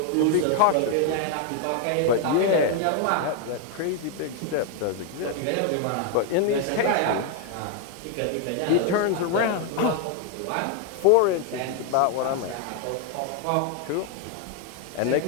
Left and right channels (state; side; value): different; both; correlation 0.01